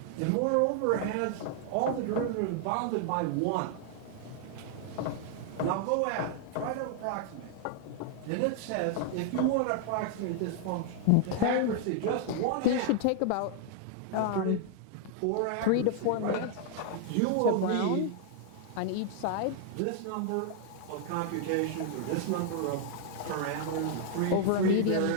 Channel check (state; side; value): different; both; correlation 0.00